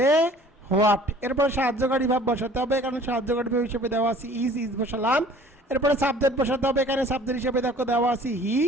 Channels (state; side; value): normal; both; correlation 0.51